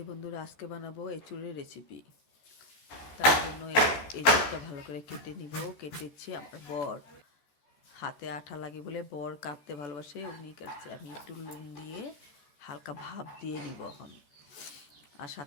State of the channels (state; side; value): late; right; 14 ms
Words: বন্ধুরা, আজকে বানাবো এঁচুড়ের রেসিপি। তার জন্য এঁচুড়টা ভালো করে কেটে নিব। কেটেছি আমার বর, হাতে আঠা লাগে বলে বর কাটতে ভালোবাসে, উনি কাটছে। আমি একটু নুন দিয়ে হালকা ভাপ দিয়ে নিব এখন, আর